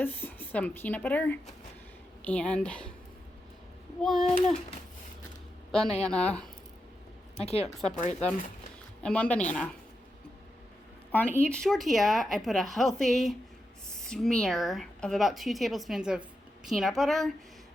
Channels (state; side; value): normal; both; correlation 0.87